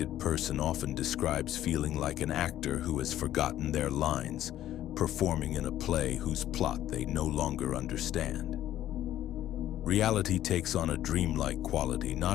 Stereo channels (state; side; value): quieter; right; 12.6 dB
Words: person often describes feeling like an actor who has forgotten their lines, performing in a play whose plot they no longer understand. Reality takes on a dreamlike quality,